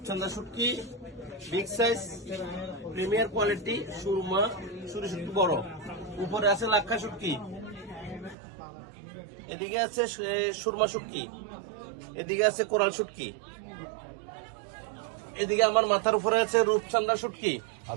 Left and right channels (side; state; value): left; drops out; at 8.3 s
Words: শুটকি বিগ সাইজ প্রিমিয়ার কোয়ালিটি, সুরমা সুরি শুটকি বড়। উপরে আছে লাক্ষা শুটকি, এদিকে আছে সুরমা শুটকি, এদিকে আছে কোরাল শুটকি, এদিকে আমার মাথার উপরে আছে রূপচাঁদা শুটকি,